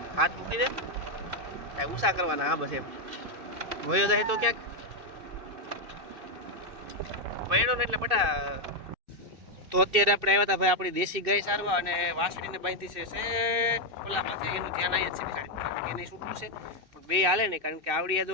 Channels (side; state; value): left; late; 2.6 ms